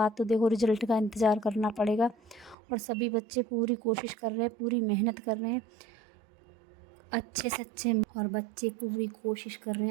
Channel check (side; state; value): left; drops out; at 2.6 s